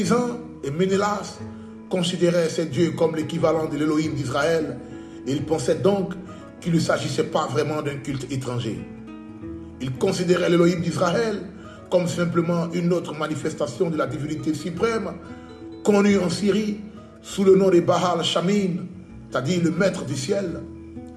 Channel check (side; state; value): both; identical; correlation 1.00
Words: et Ménélas considéraient ces dieux comme l'équivalent de l'Élohim d'Israël et ils pensaient donc qu'il ne s'agissait pas vraiment d'un culte étranger. Ils considéraient l'Élohim d'Israël comme simplement une autre manifestation de la divinité suprême connue en Syrie sous le nom de Baal Shamin, c'est-à-dire le maître du ciel,